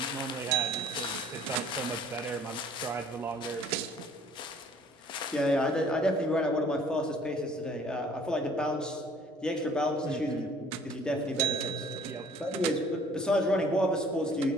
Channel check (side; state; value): both; normal; correlation 0.56